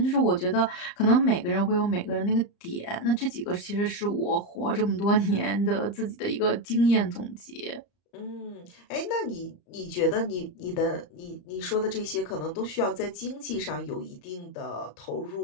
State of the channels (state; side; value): late; right; 34 ms